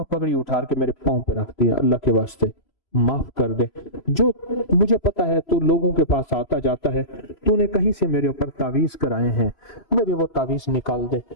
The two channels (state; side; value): late; right; 3.0 ms